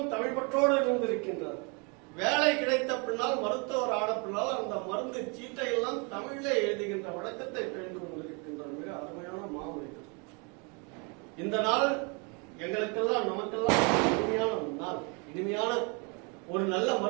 தமிழ் பற்றோடு இருந்திருக்கின்றார். வேலை கிடைத்த பின்னால், மருத்துவர் ஆன பின்னால் அந்த மருந்து சீட்டை எல்லாம் தமிழிலே எழுதுகின்ற வழக்கத்தை பெய்து கொண்டிருக்கின்றார். மிக அருமையான மாமனிதர். இந்த நாள் எங்களுக்கெல்லாம், நமக்கெல்லாம் இனிமையான நாள், இனிமையான ஒரு நல்ல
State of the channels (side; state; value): left; quieter; 32.9 dB